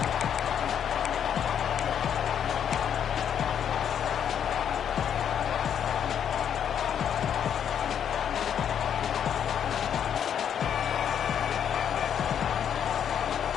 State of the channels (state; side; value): quieter; right; 8.7 dB